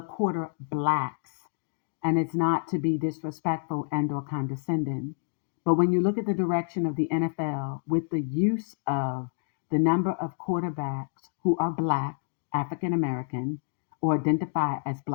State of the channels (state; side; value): silent; right; digital silence